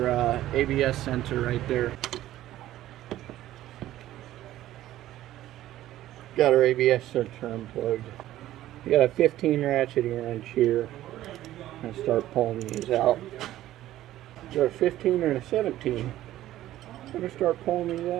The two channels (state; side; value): quieter; left; 14.0 dB